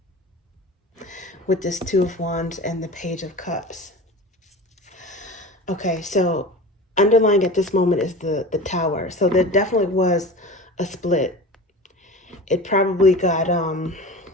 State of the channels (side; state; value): both; normal; correlation 0.33